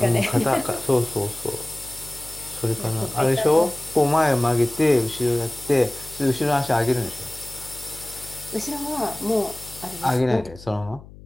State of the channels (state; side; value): noise; left; hum, 19 dB below the sound